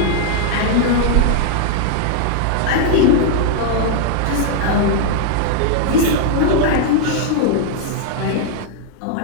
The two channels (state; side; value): different; both; correlation 0.00